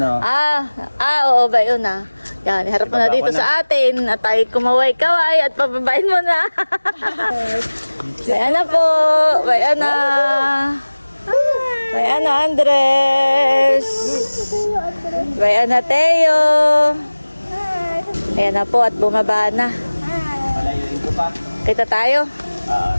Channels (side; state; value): both; inverted; correlation -1.00